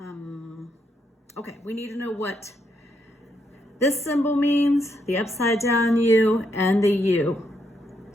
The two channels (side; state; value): both; normal; correlation 0.78